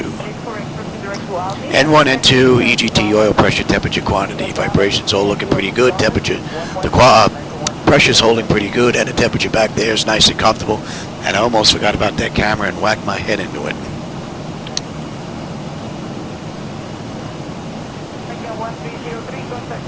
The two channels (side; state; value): both; identical; correlation 1.00